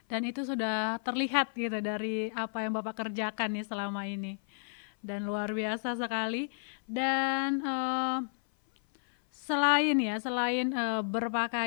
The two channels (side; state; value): right; silent; 56 dB below the other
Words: Dan itu sudah terlihat gitu dari apa yang Bapak kerjakan nih selama ini. Dan luar biasa sekali. Dan selain